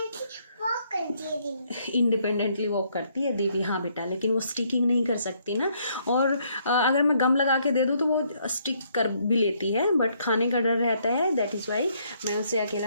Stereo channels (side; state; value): both; inverted; correlation -0.70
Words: इंडिपेंडेंटली वॉक करती है दीदी, हाँ बेटा, लेकिन वो स्टिकिंग नहीं कर सकती ना। और अगर मैं गम लगा के दे दूँ तो वो स्टिक कर भी लेती है, बट खाने का डर रहता है, दैट इज़ वाई मैं उसे